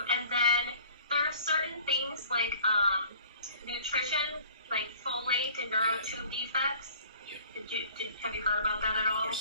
And then there are certain things like nutrition, like folate and neurotube defects. Have you heard about that at all?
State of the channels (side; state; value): both; inverted; correlation -0.50